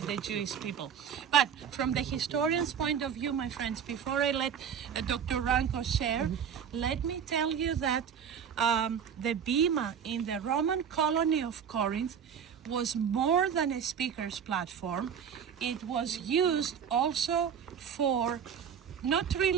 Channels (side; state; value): left; quieter; 7.8 dB